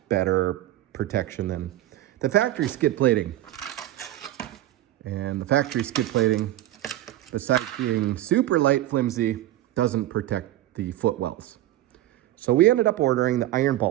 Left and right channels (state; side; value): quieter; left; 14.4 dB